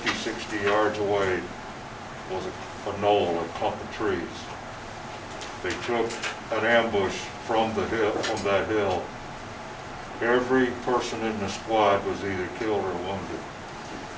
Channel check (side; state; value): both; identical; correlation 1.00